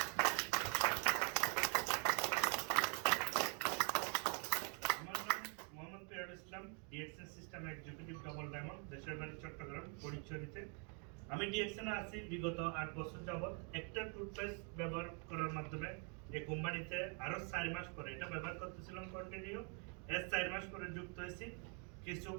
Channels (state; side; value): quieter; left; 38.7 dB